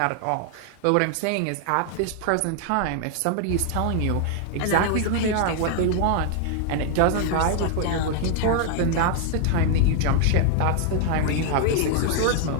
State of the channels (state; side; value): different; both; correlation 0.00